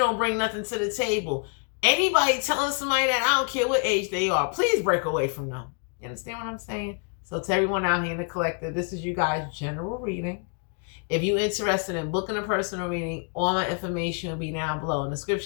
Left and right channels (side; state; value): right; quieter; 39.5 dB